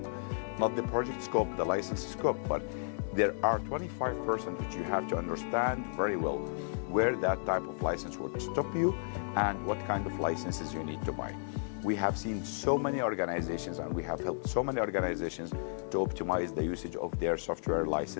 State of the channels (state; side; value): silent; right; digital silence